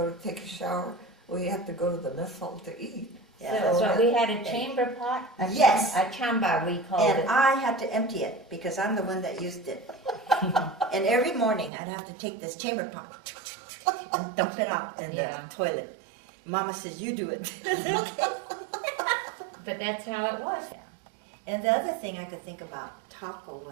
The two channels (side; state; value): left; drops out; at 11.7 s